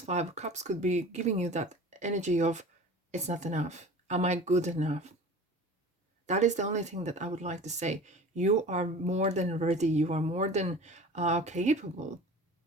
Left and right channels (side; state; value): both; normal; correlation 0.39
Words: 5 of Cups could be giving you that energy of, it's not enough. Am I good enough? That is the only thing that I would like to say. You are more than ready. You are more than capable